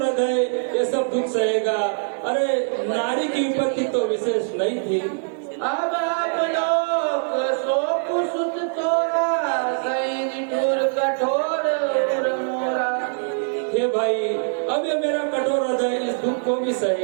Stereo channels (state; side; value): silent; left; digital silence